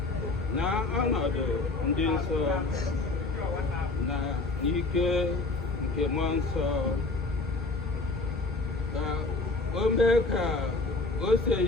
na ọnọdụ ndị nsọ na n'ike nke mmụọ nsọ, ka o mee ka o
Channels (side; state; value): right; quieter; 3.3 dB